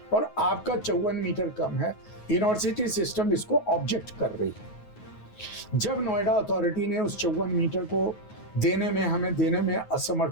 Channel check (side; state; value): right; late; 9.4 ms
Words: और आपका 54 मीटर कम है। यूनिवर्सिटी सिस्टम इसको ऑब्जेक्ट कर रही है। जब नोएडा अथॉरिटी ने उस 54 मीटर को हमें देने में